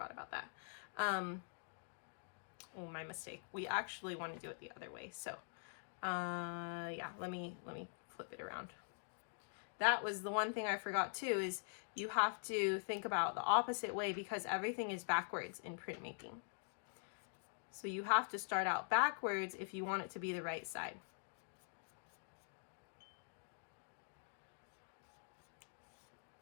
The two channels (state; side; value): silent; right; digital silence